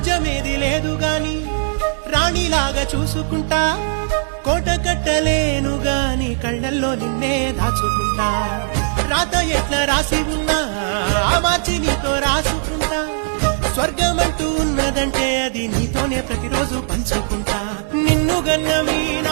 లేదు గాని రాణిలాగా చూసుకుంటా, కోట కట్టలేను గాని కళ్ళల్లో నిన్నే దాచుకుంటా. రాత ఎట్లా రాసి ఉన్నా ఆ మార్చి నీతో రాసుకుంటా, స్వర్గమంటూ ఉన్నదంటే అది నీతోనే ప్రతిరోజు పంచుకుంటా. నిన్ను గన్న మీ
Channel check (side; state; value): left; silent; digital silence